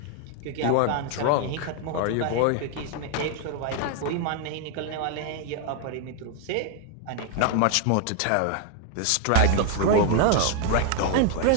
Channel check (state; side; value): different; both; correlation 0.00